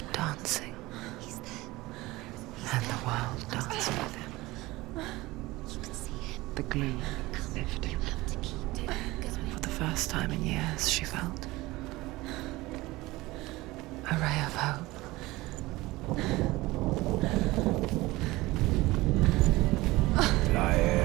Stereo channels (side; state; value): left; quieter; 20.0 dB